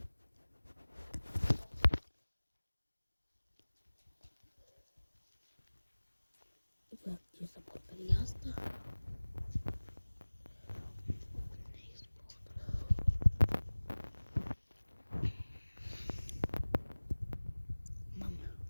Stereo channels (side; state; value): both; inverted; correlation -1.00